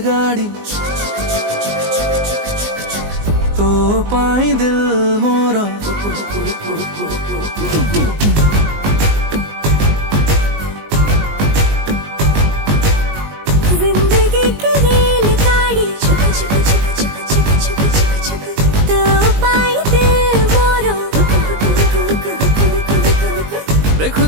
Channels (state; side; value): late; left; 19 ms